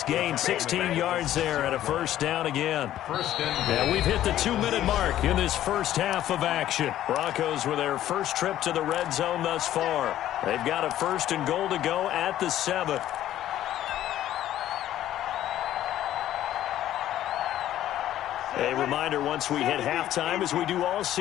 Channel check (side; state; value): right; quieter; 12.6 dB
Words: gain, 16 yards there and a first down again. And we've hit the 2-minute mark in this first half of action. Broncos with their first trip to the red zone thus far. They've got a 1st and goal to go at the 7. A reminder, once we hit halftime, as we do all